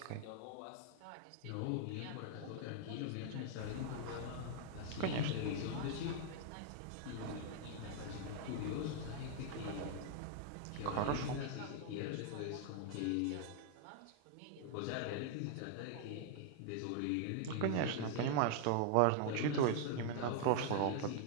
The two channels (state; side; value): different; both; correlation 0.00